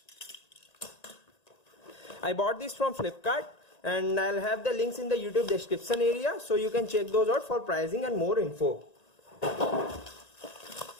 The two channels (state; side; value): late; right; 1.9 ms